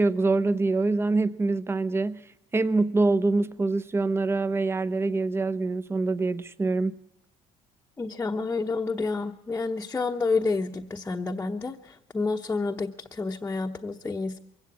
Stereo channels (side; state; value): both; normal; correlation 0.91